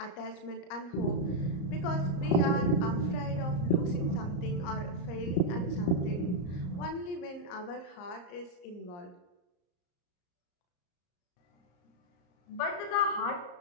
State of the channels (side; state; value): right; late; 34 ms